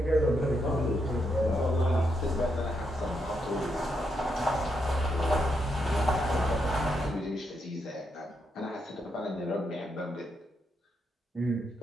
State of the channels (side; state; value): both; normal; correlation 0.80